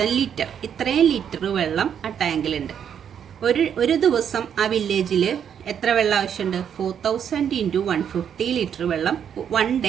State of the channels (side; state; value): left; quieter; 8.4 dB